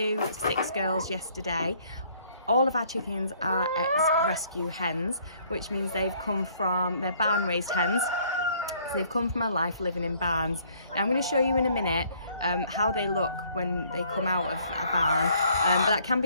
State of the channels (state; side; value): inverted; both; correlation -0.62